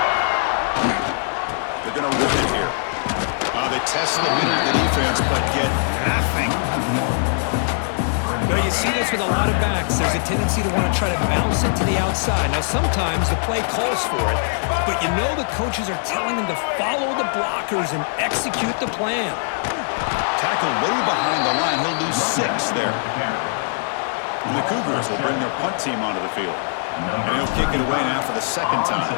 They're going to run it here. They test the middle of the defense, but get nothing. Well, you see this with a lot of backs. There's a tendency to want to try to bounce it to the outside. Now, sometimes the play calls for it, but you know the coaches are telling them to follow the blockers and execute the plan. Tackle way behind the line. He'll lose 6 there. And the Cougars will bring their punt team onto the field. And he'll kick it away now for the second time.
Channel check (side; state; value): right; silent; 65 dB below the other